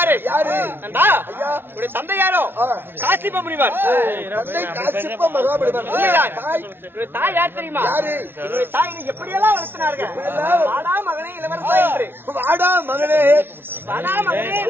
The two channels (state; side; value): late; left; 0.11 ms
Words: நண்பா, உடைய தந்தை யாரோ? காசிப முனிவர். காசிப்ப மகாபலிவர். என்னுடைய தாய் யார் தெரியுமா? என்னுடைய தாய் என்னை எப்படியெல்லாம் வளர்த்தினார்கள். வாடா மகனே இளவரசா என்று. வாடா மகனே, வாடா மகனே